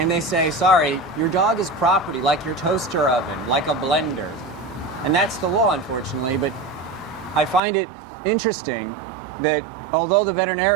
they say, sorry, your dog is property, like your toaster oven, like a blender. And that's the law, unfortunately, but I find it interesting that although the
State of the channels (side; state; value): left; drops out; at 7.6 s